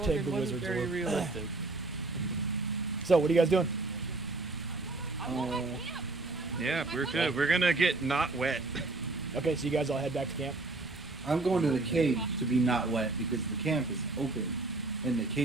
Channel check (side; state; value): left; quieter; 3.3 dB